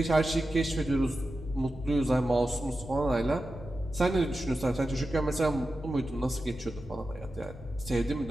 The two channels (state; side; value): noise; left; rumble, 18 dB below the sound